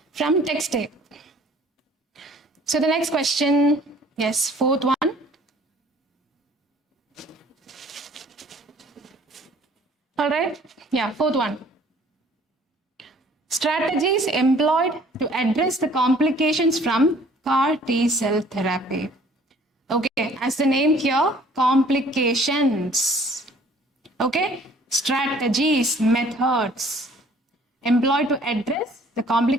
from text A. So the next question, yes, fourth one. All right, yeah, fourth one. Strategies employed to address the complications from CAR T cell therapy. Okay, as the name here, complications. Okay, strategies, methods employed to address the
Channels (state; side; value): normal; both; correlation 0.55